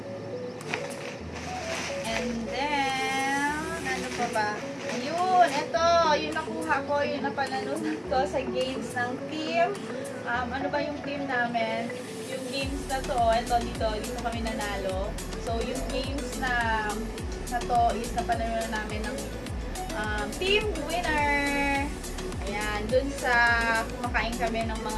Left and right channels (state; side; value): identical; both; correlation 1.00